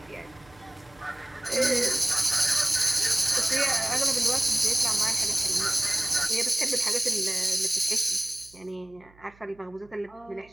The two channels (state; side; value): noise; right; hum, 28 dB below the sound